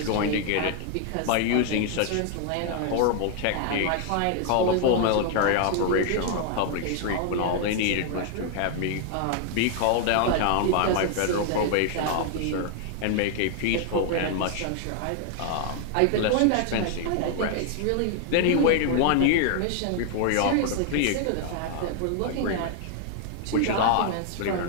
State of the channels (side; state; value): both; different; correlation 0.00